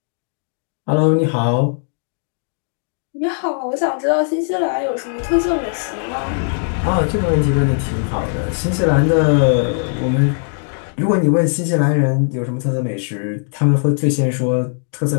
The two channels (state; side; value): silent; right; digital silence